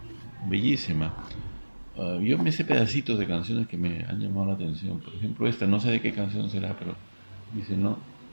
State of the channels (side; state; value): both; inverted; correlation -1.00